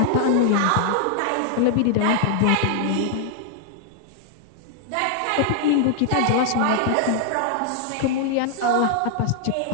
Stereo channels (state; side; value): different; both; correlation 0.00